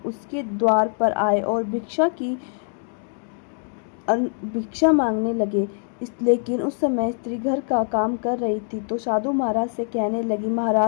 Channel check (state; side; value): silent; right; 63 dB below the other